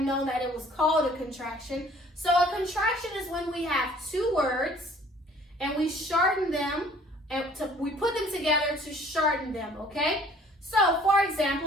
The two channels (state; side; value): normal; both; correlation 0.55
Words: known that it was called a contraction. So a contraction is when we have two words and we shorten them, and we put them together to shorten them, okay? So, for